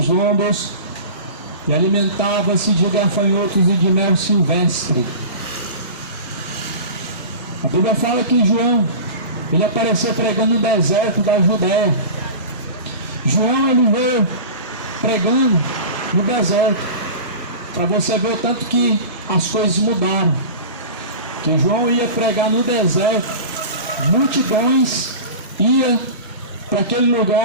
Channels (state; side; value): inverted; both; correlation -0.34